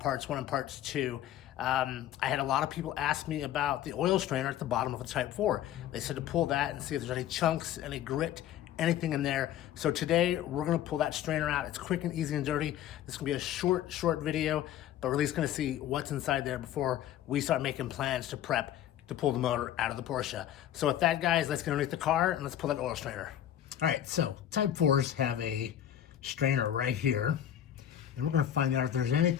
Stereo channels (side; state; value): right; quieter; 11.1 dB